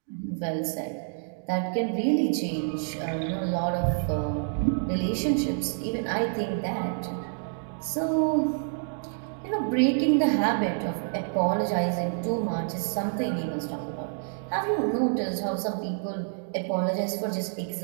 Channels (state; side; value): silent; left; digital silence